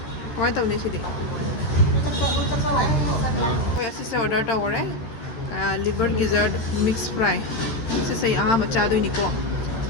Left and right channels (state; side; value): late; right; 13 ms